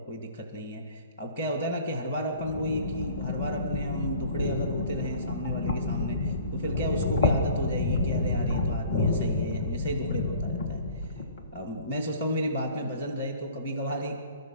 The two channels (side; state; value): both; inverted; correlation -0.49